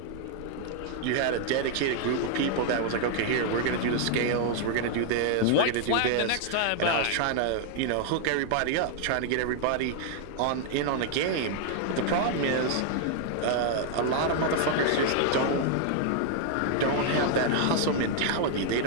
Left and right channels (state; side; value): different; both; correlation 0.00